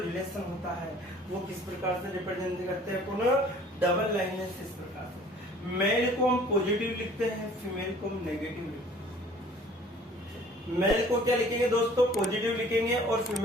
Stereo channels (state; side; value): normal; both; correlation 0.52